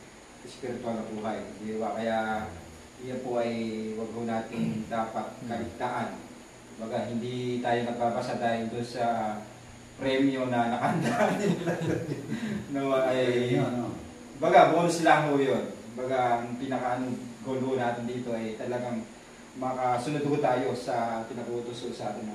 spiritual na buhay. Di ba? Kaya yan po ay wag po natin dapat kaligtaan. Baga, hindi tayo nagbabasa dahil doon sa premyo na nakandaan nila. No, ay, baga, bonus lang ho yun. Baga, ang pinaka-goal ho natin dito ay talagang makasunod ho tayo sa pinagutos sa ating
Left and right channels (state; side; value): identical; both; correlation 1.00